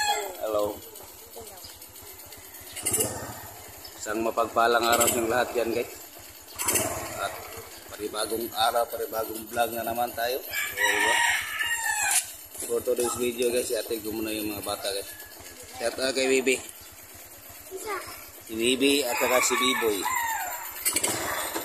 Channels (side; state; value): both; identical; correlation 1.00